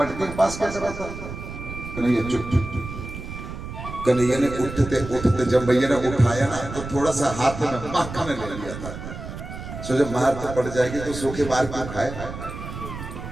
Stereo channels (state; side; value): noise; right; rumble, 9 dB below the sound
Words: के पास क्या कर रहा था? कन्हैया चुप चुप चुप। कन्हैया ने उठते उठते जब भैया ने उठाया ना तो थोड़ा सा हाथ में मक्खन ले लिया था। सो जब मार तो पड़ जाएगी तो सूखे बार क्यों खाए,